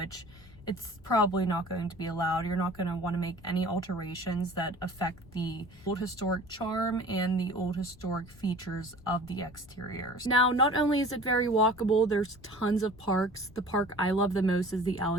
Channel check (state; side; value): noise; left; rumble, 22 dB below the sound